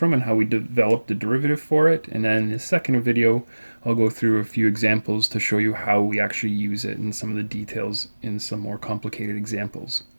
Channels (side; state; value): both; inverted; correlation -1.00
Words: and how we develop the derivative for it. And then in the second video I'll go through a few examples to show you how we actually use it and some of the details in some more complicated examples.